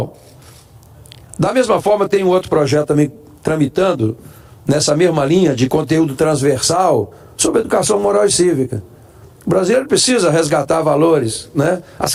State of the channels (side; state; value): both; identical; correlation 1.00